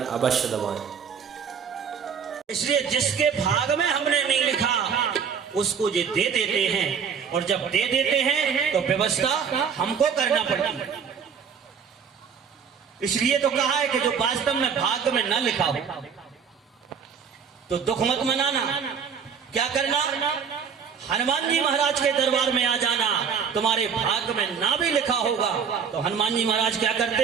अवश्य दबाएं। इसलिए जिसके भाग में हमने नहीं लिखा उसको ये दे देते हैं, और जब दे देते हैं तो व्यवस्था हमको करना पड़ती है। इसलिए तो कहा है कि जो वास्तव में भाग्य में न लिखा हो तो दुख मत मनाना। क्या करना? हनुमान जी महाराज के दरबार में आ जाना। तुम्हारे भाग्य में ना भी लिखा होगा तो हनुमान जी महाराज क्या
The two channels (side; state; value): left; quieter; 6.8 dB